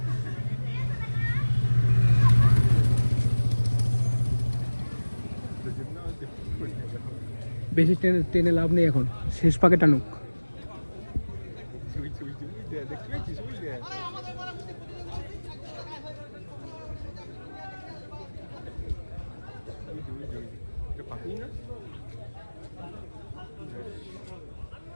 বেশি টেনে লাভ নেই এখন, শেষ পাকে টানুক।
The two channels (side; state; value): both; inverted; correlation -1.00